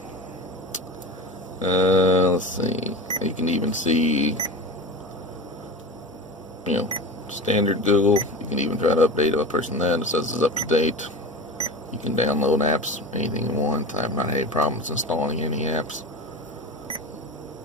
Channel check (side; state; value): both; normal; correlation 0.28